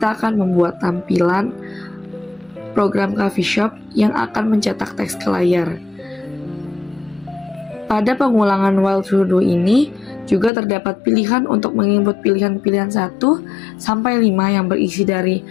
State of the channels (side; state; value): right; drops out; at 10.5 s